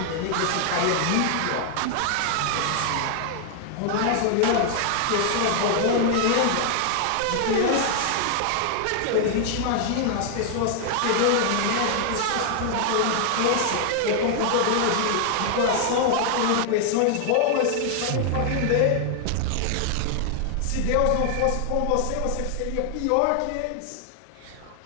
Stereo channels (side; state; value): both; different; correlation 0.00